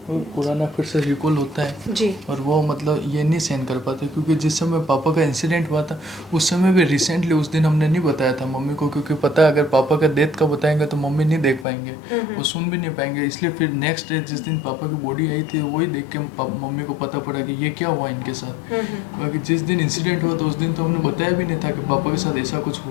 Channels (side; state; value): right; drops out; at 11.7 s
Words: पुराना फिर से रिकॉल होता है जी। और वो मतलब ये नहीं सहन कर पाते, क्योंकि जिस समय पापा का इंसिडेंट हुआ था उस समय भी रिसेंटली उस दिन हमने नहीं बताया था मम्मी को, क्योंकि पता है अगर पापा का डेथ का बताएंगे तो मम्मी नहीं देख पाएंगे, वो सुन भी नहीं पाएंगे। इसलिए फिर नेक्स्ट डे जिस दिन पापा की बॉडी आई थी वही देख के मम्मी को पता पड़ा कि ये क्या हुआ इनके साथ। बाकी जिस दिन इंसिडेंट हुआ था उस दिन तो हमने बताया भी नहीं था कि पापा के साथ ऐसा कुछ